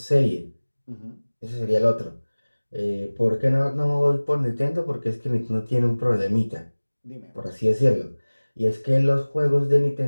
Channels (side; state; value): both; inverted; correlation -1.00